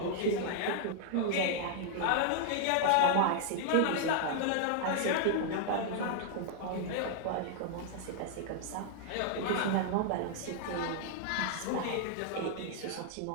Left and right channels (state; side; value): different; both; correlation 0.00